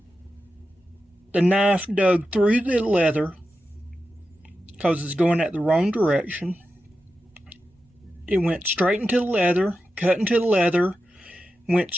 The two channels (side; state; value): both; normal; correlation 0.91